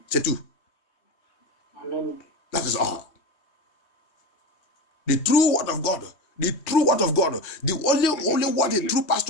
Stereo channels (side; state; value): right; late; 3.2 ms